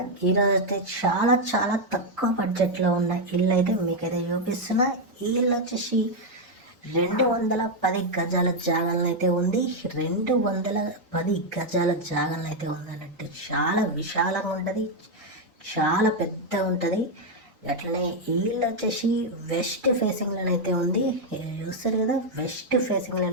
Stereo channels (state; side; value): normal; both; correlation 0.01